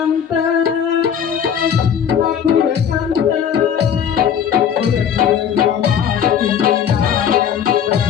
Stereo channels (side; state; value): right; quieter; 8.4 dB